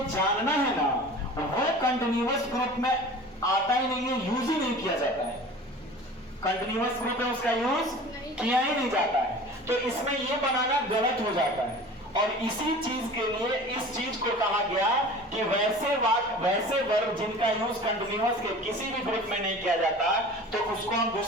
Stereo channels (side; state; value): both; normal; correlation 0.40